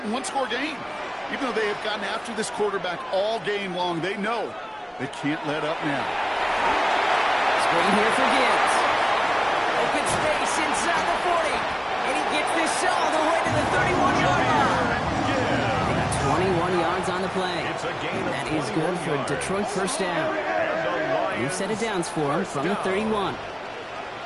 one-score game. Even though they have gotten after this quarterback all game long, they know they can't let up now. Screen here for Gibbs. Open space inside the 40. And he gets this all the way to the 31-yard line. They got 21 yards on the play. And that is good for Detroit 1st down. New set of downs for him from the 31.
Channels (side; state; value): both; identical; correlation 1.00